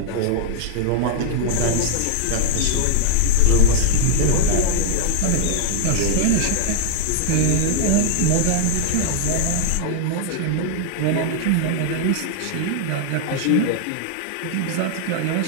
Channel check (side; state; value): both; different; correlation -0.01